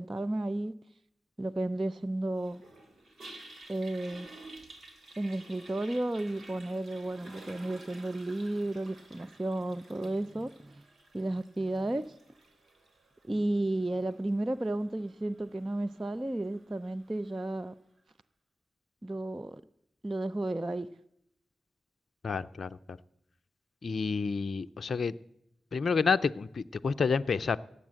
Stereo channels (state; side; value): normal; both; correlation 0.91